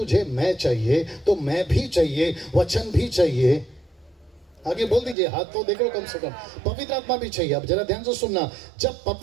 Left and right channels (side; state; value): left; drops out; at 5.2 s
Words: मैं चाहिए तो मैं भी चाहिए, वचन भी चाहिए। आगे बोल दीजिए, हाथ तो देखो कम से कम, पवित्र आत्मा भी चाहिए। अब जरा ध्यान से सुनना, जब